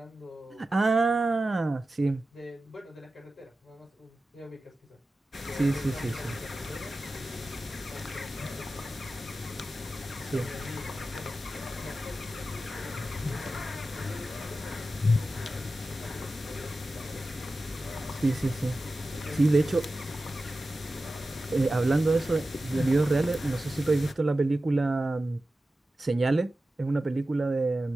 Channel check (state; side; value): normal; both; correlation 0.94